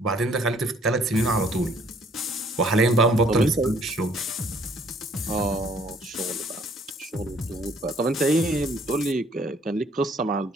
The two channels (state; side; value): normal; both; correlation 0.61